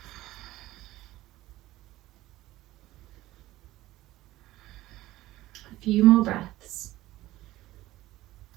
A few more breaths.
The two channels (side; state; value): left; quieter; 16.4 dB